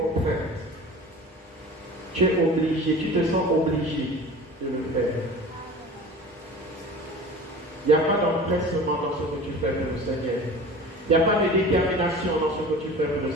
Tu es obligé, tu te sens obligé de le faire. Il n'y a pas d'empressement dans ce que tu fais pour le Seigneur. Il n'y a pas de détermination dans ce que tu fais pour le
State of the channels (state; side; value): normal; both; correlation 0.38